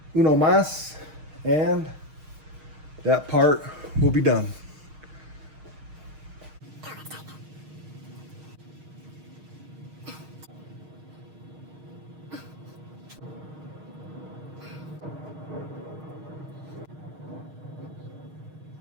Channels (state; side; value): late; left; 6.5 ms